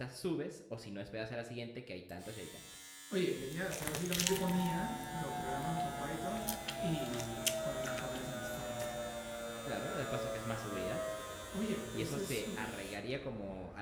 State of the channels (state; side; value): identical; both; correlation 1.00